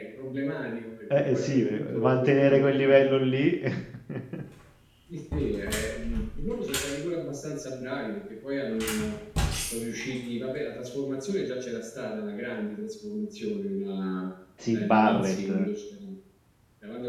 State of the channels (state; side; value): identical; both; correlation 1.00